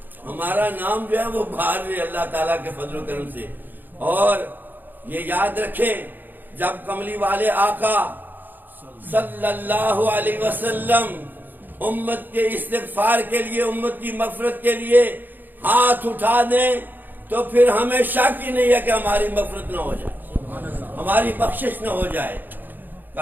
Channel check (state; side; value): late; left; 0.088 ms